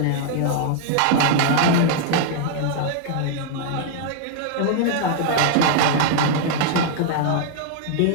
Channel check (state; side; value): different; both; correlation 0.00